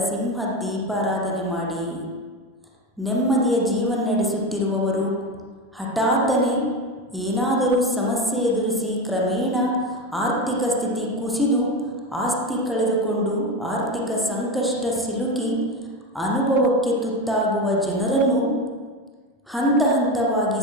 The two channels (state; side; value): normal; both; correlation 0.19